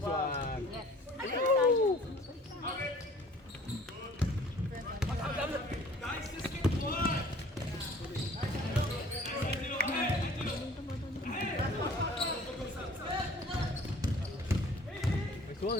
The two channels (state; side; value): normal; both; correlation 0.51